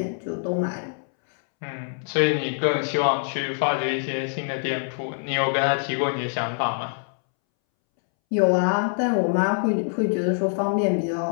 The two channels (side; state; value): right; silent; 62 dB below the other